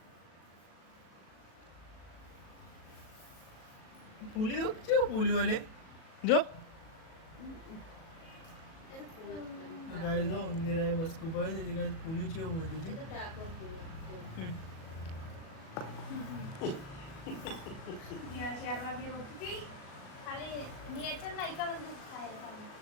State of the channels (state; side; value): late; right; 37 ms